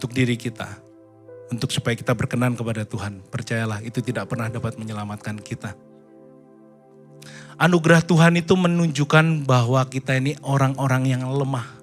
diri kita, untuk supaya kita berkenan kepada Tuhan, percayalah itu tidak pernah dapat menyelamatkan kita. Anugerah Tuhan itu menunjukkan bahwa kita ini orang-orang yang lemah.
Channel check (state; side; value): identical; both; correlation 1.00